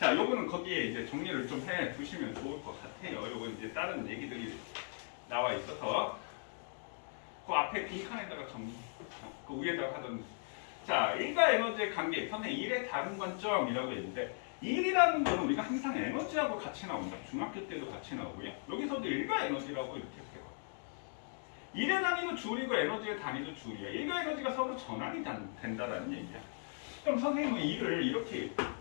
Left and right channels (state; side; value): silent; right; 53 dB below the other